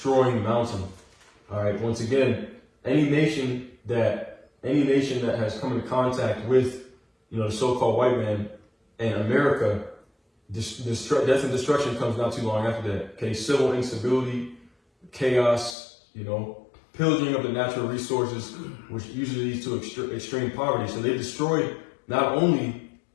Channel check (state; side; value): drops out; right; at 15.8 s